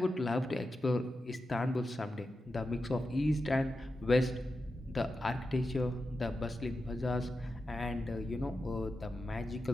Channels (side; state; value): both; normal; correlation 0.90